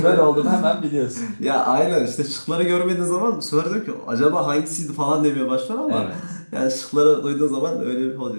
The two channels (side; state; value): both; inverted; correlation -1.00